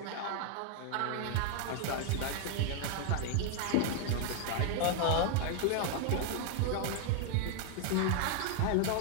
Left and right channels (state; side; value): different; both; correlation 0.00